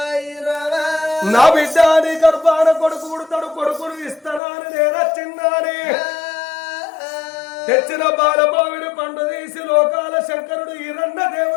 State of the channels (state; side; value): drops out; right; at 4.4 s